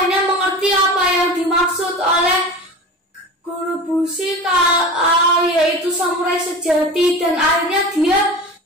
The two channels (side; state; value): both; normal; correlation 0.33